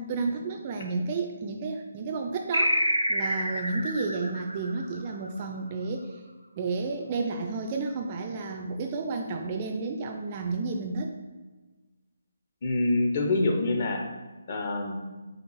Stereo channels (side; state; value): both; inverted; correlation -0.77